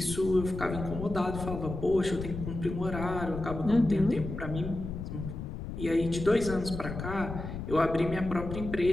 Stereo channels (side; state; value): left; noise; rumble, 7 dB below the sound